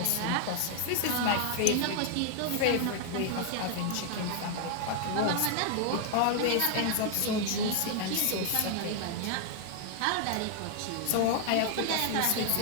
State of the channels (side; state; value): both; different; correlation 0.00